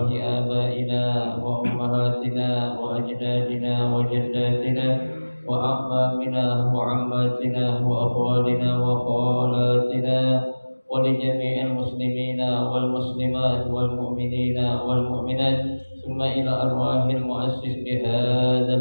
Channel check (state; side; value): inverted; both; correlation -1.00